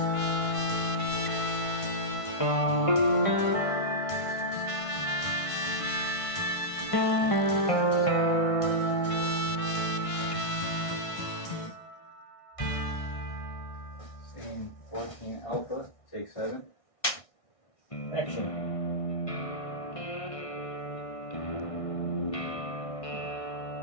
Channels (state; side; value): late; right; 1.5 ms